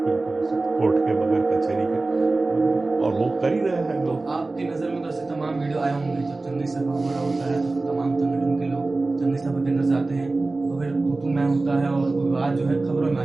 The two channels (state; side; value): quieter; left; 3.3 dB